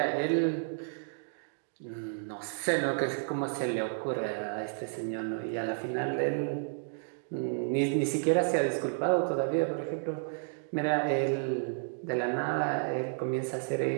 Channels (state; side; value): silent; left; digital silence